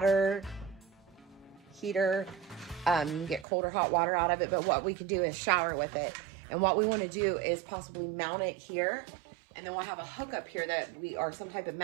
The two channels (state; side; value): drops out; left; at 3.5 s